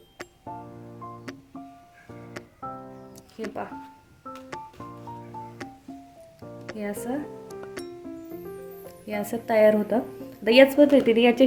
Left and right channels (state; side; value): identical; both; correlation 1.00